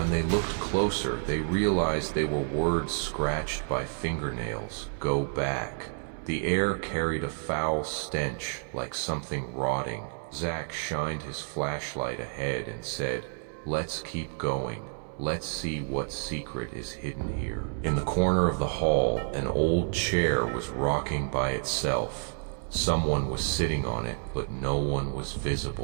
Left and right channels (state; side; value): silent; left; 58 dB below the other